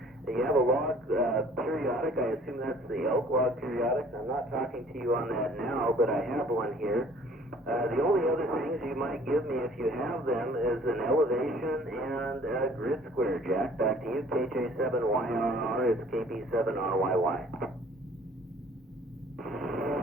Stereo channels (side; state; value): both; normal; correlation 0.54